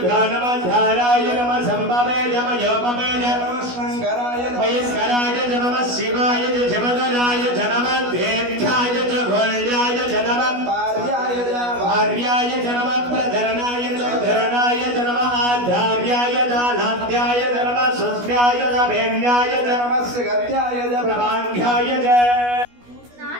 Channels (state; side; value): late; left; 16 ms